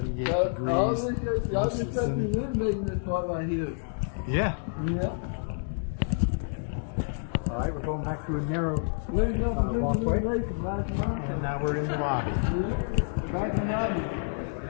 Y'all degrees. just got me renovating this part right here. Yeah. Yeah. All right, we're going back through a narrow, Where's the walkway. renovation? Back in the lobby. and now we're in the lobby. Yeah. Back in the lobby.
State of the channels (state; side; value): silent; right; digital silence